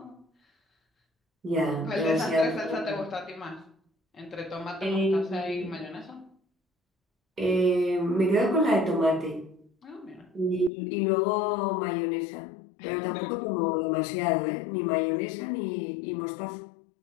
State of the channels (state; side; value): drops out; right; at 10.7 s